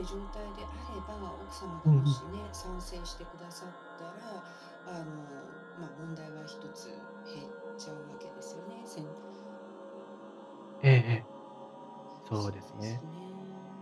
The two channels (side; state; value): both; identical; correlation 1.00